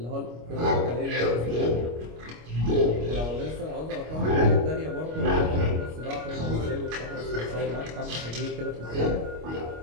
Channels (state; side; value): late; left; 25 ms